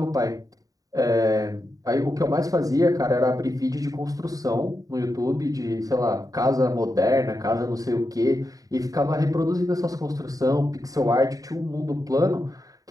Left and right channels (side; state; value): left; late; 0.17 ms